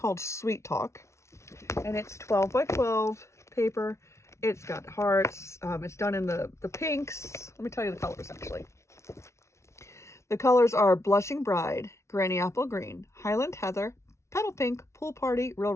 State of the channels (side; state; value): right; late; 0.13 ms